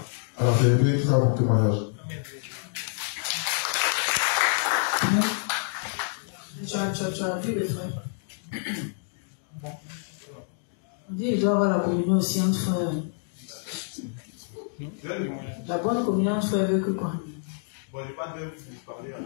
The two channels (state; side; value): silent; right; digital silence